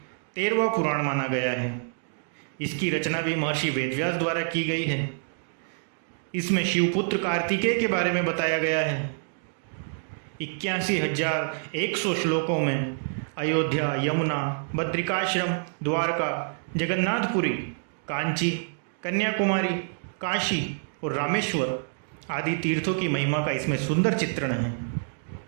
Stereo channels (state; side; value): silent; left; digital silence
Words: 13वां पुराण माना गया है। इसकी रचना भी महर्षि वेदव्यास द्वारा की गई है। इसमें शिवपुत्र कार्तिकेय के बारे में बताया गया है। 81,100 श्लोकों में अयोध्या, यमुना, बद्रिकाश्रम, द्वारका, जगन्नाथपुरी, कांची, कन्याकुमारी, काशी और रामेश्वर आदि तीर्थों की महिमा का इसमें सुंदर चित्रण है।